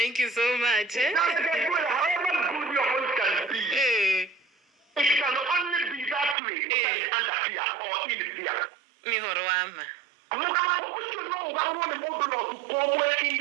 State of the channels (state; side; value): drops out; left; at 6.4 s